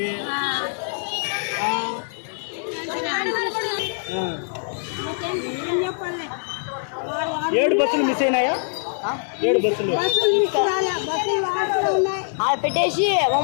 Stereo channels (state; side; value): silent; right; 63 dB below the other